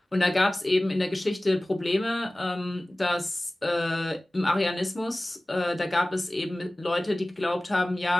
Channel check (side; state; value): both; normal; correlation 0.98